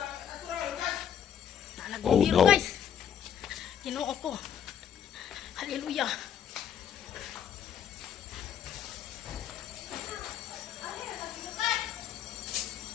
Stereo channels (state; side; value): quieter; right; 9.1 dB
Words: Bumbiro, no. guys. Ginoo ko. Hallelujah.